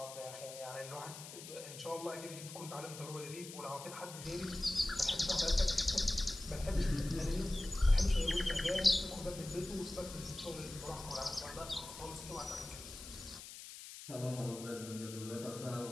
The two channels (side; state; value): left; noise; hiss, 12 dB below the sound